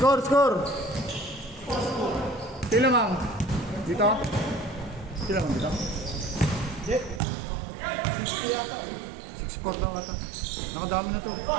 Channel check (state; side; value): drops out; left; at 7.2 s